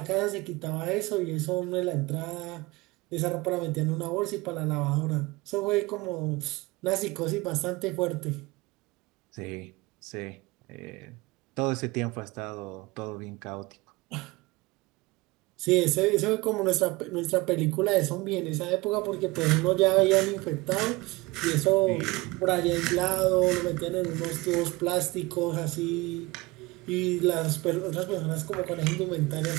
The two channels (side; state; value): left; quieter; 22.4 dB